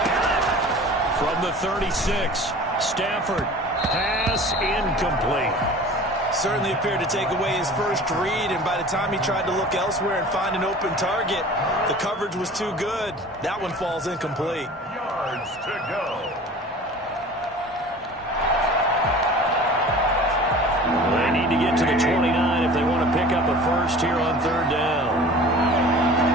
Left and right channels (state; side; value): normal; both; correlation 0.42